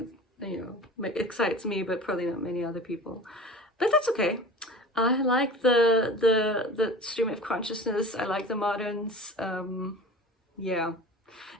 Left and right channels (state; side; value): normal; both; correlation 0.37